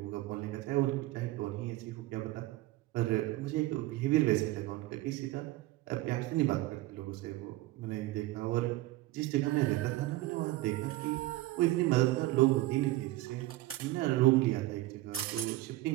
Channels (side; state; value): left; quieter; 17.8 dB